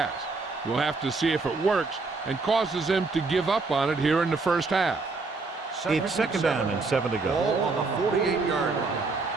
We'll have to see if it works and causes him to give up on it here in the first half. It's second down and 7 to go. Ball on the 48-yard line.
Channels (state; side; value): quieter; left; 3.9 dB